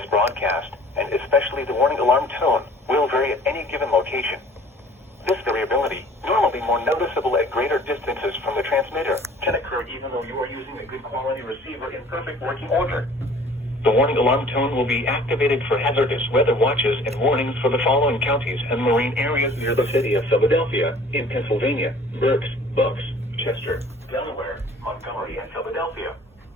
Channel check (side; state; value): both; normal; correlation 0.50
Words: broadcast, and especially the warning alarm tone, will vary at any given location. This variability, normally more noticeable at greater distances from the transmitter, can occur even though you are using a good quality receiver in perfect working order. The warning alarm tone will be activated for hazardous weather watches and warnings for the following counties and marine areas near the city of Philadelphia, in Pennsylvania, Berks, Bucks, Chester, Delaware, Montgomery, and Philadelphia.